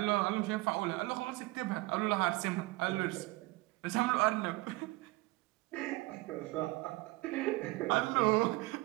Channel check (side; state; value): left; quieter; 21.0 dB